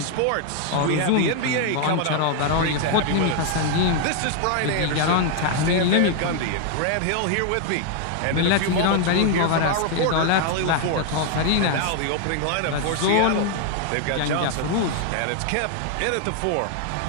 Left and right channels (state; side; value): different; both; correlation 0.00